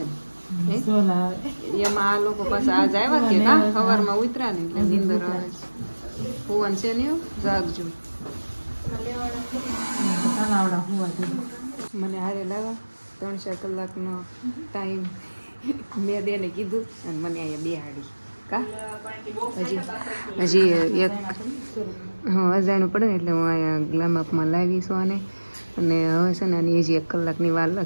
ને એમાં. આ લોકો પાસે આજ આવ્યા કે કા સવારમાં ઉતર્યા ને એટલે નીંદર આવે છે. ભુવન છે ને જાગજો. મને હારે લાવા 3-4 કલાકનો ટાઈમ મેં બેને કીધું અને મને અહીંયા બેહાડી કા. હજી એક અજાણું પડે ને એટલે હું અહીંયા ગ્લામઅપમાં લાવીશું આને. અને હવે છે ને આની હજી 1 કલાકની વાર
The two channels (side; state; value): both; inverted; correlation -1.00